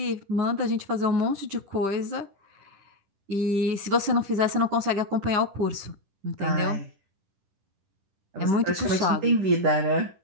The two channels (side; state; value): left; late; 10 ms